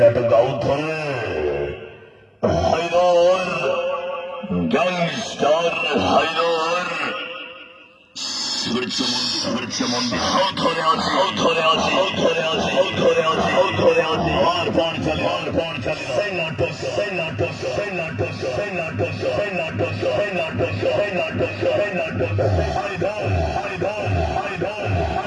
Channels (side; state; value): both; identical; correlation 1.00